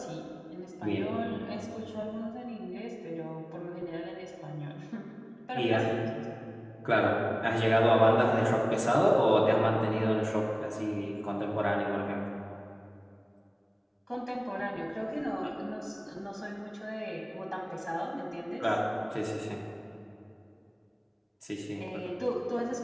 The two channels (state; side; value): identical; both; correlation 1.00